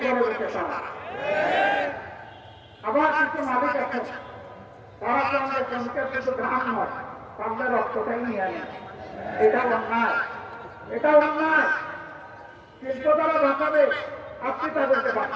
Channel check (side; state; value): both; identical; correlation 1.00